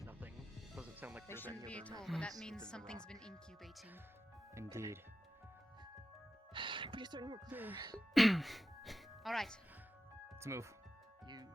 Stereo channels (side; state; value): both; normal; correlation 0.91